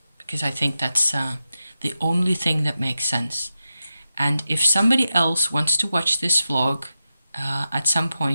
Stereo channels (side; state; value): both; inverted; correlation -0.90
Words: because I think that's the only thing that makes sense. And if somebody else wants to watch this vlog at some